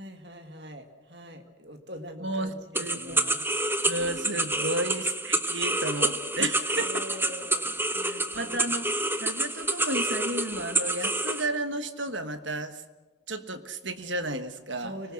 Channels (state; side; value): normal; both; correlation 0.22